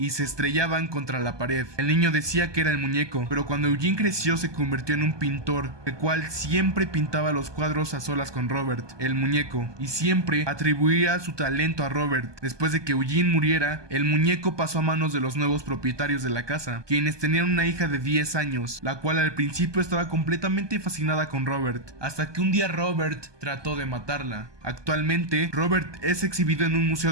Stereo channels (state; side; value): late; left; 1.2 ms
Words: se estrellaban contra la pared. El niño decía decía que era el muñeco, pero cuando Eugene creció se convirtió en un pintor, el cual siempre pintaba los cuadros a solas con Robert, el muñeco, y siempre atribuía su talento a Robert. Después de que Eugene muriera, el muñeco pasó a manos de los nuevos propietarios de la casa, quienes tenían una hija de 10 años, la cual al principio estaba completamente fascinada con Robert, hasta que un día Robert trató de matarla. Actualmente, Robert es exhibido en un